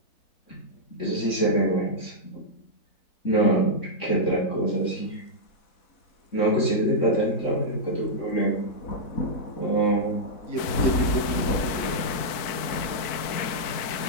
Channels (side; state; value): right; late; 4.5 ms